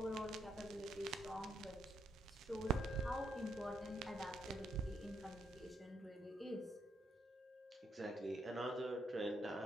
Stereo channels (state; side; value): normal; both; correlation 0.76